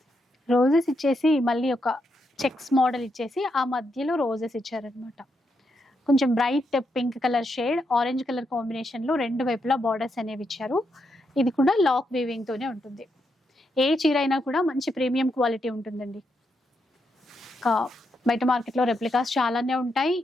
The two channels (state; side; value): normal; both; correlation 0.81